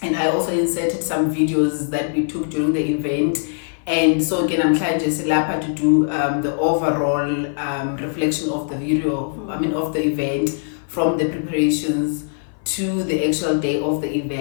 and I also inserted some videos that we took during the event. And so again, I'm trying just to do the overall reflection of the video, of the event, from the preparations to the actual day of the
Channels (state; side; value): silent; right; 57 dB below the other